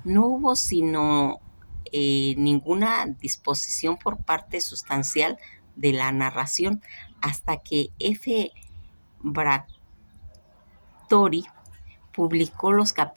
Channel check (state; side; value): inverted; both; correlation -1.00